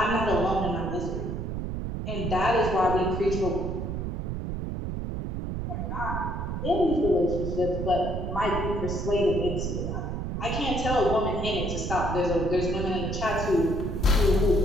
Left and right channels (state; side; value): noise; right; rumble, 3 dB below the sound